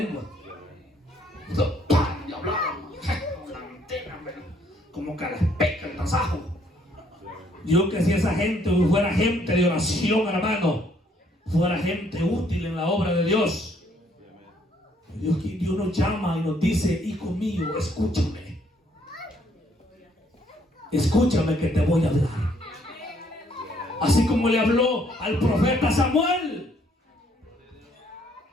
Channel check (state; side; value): normal; both; correlation 0.66